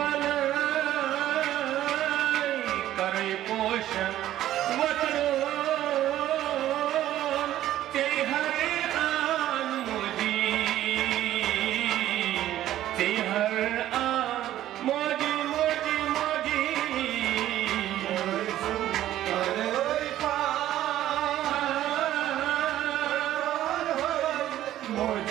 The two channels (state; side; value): quieter; left; 13.1 dB